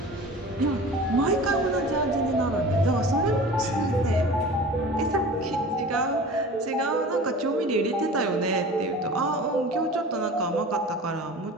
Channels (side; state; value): both; normal; correlation 0.39